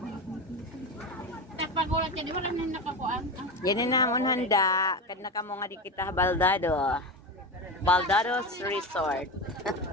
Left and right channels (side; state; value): both; normal; correlation 0.20